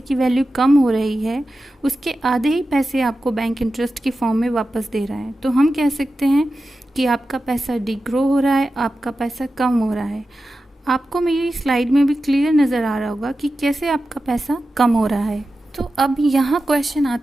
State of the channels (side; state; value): both; normal; correlation 0.93